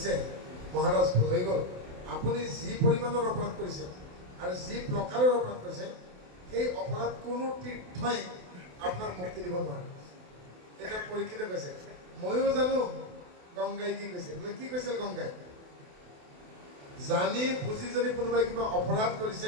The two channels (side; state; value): left; late; 28 ms